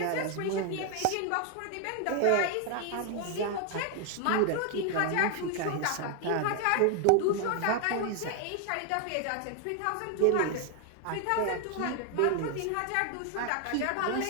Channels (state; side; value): different; both; correlation 0.01